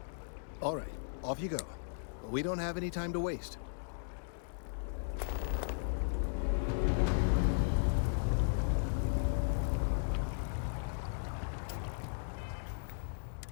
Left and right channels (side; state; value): right; silent; digital silence